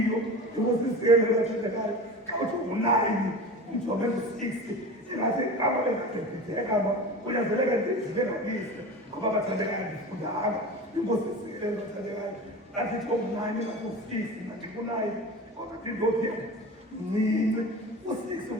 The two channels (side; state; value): both; normal; correlation 0.32